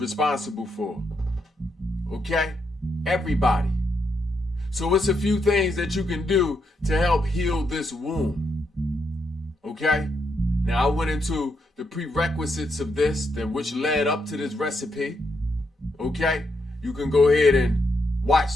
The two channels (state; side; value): normal; both; correlation 0.80